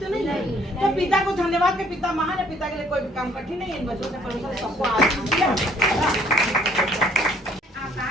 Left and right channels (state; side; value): normal; both; correlation 0.61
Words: नहीं है। तो पिता को धन्यवाद के पिता महान है, पिता के लिए कोई भी काम कठिन नहीं है। इन बच्चों से परमेश्वर ने सबको आशीष दिया।